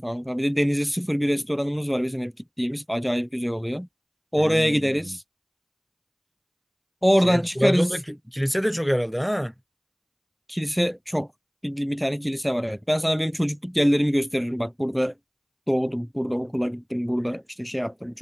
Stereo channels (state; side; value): identical; both; correlation 1.00